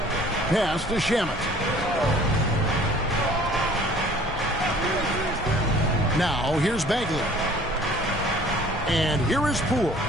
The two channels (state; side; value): normal; both; correlation 0.52